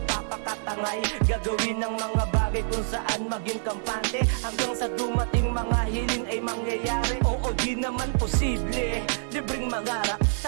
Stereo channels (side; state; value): left; silent; 60 dB below the other